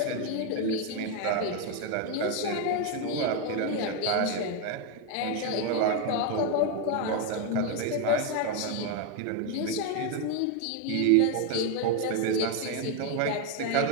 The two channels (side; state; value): both; different; correlation 0.02